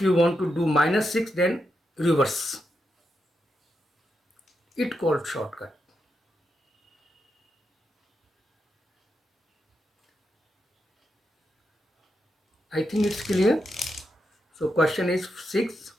you want to do -6, then reverse. It called shortcut. I think it's clear. So question is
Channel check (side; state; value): both; normal; correlation 0.85